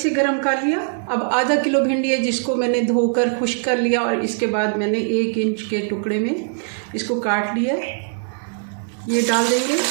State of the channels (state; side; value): silent; left; digital silence